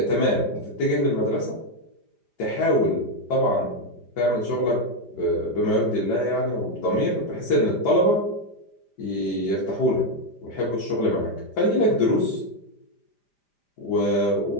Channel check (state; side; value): late; right; 5.0 ms